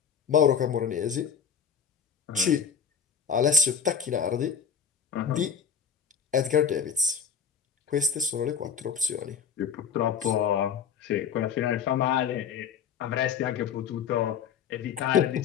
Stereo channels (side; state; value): right; quieter; 6.9 dB